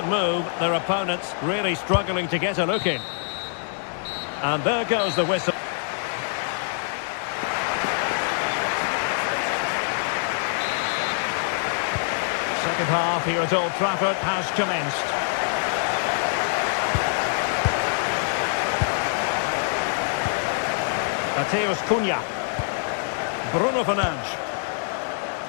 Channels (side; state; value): right; silent; digital silence